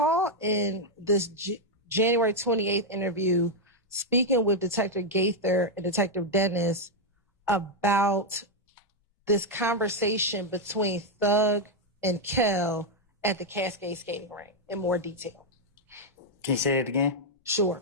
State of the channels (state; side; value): normal; both; correlation 0.00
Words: in this January 28th interview speaking with Detective Gaither and Detective Dennis about this conversation between Thug and Kel at the Cascade skating rink in more detail? Can you say it again?